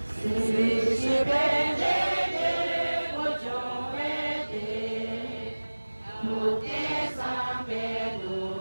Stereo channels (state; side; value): inverted; both; correlation -1.00